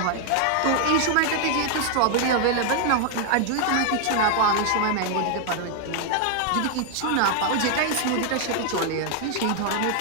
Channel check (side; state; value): both; different; correlation 0.00